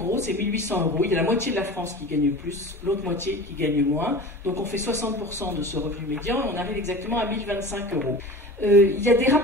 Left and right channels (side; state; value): both; normal; correlation 0.36